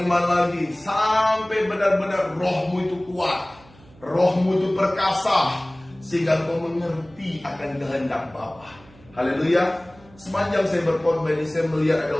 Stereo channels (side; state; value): right; noise; hum, 25 dB below the sound